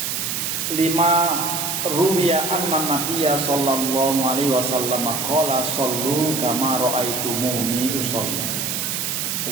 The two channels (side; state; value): right; noise; hiss, 1 dB below the sound